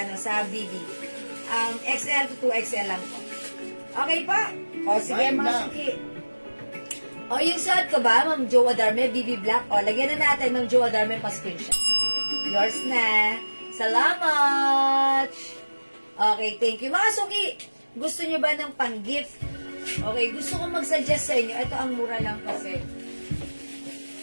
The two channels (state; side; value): inverted; both; correlation -1.00